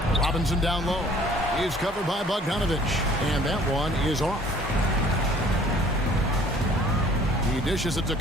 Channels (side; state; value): both; normal; correlation 0.54